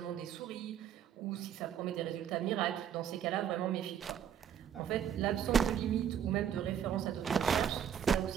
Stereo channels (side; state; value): left; quieter; 8.9 dB